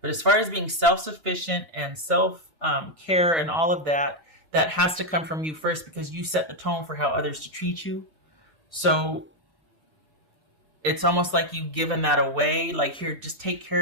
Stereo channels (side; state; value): left; late; 2.8 ms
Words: as far as being self-sufficient and self-care and all of that, that has to come from you first because you set the tone for how others to treat you. So it's almost like you've given that away. Like, here, just take